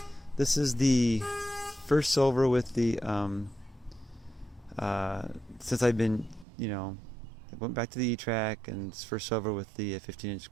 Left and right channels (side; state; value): left; drops out; at 6.5 s